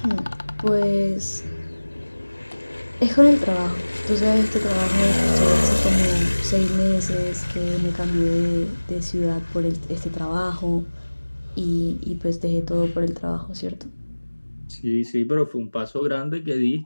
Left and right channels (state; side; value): inverted; both; correlation -1.00